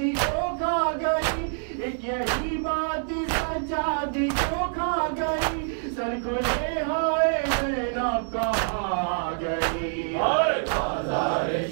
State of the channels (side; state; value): left; silent; digital silence